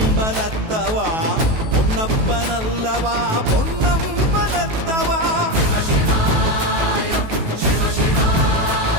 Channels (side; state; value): left; late; 18 ms